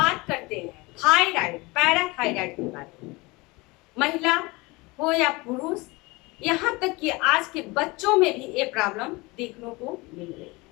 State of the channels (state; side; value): quieter; right; 24.1 dB